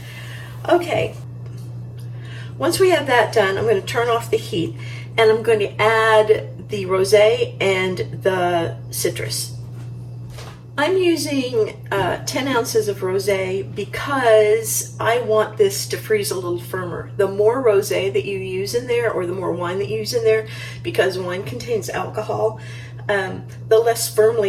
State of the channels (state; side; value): identical; both; correlation 1.00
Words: Okay, once we have that done, I'm going to turn off the heat and I'm going to add the rosé and the citrus. I'm using 10 ounces of rosé because I want this to freeze a little firmer. The more rosé that you use in there, or the more wine that you use in there, because wine contains alcohol, the less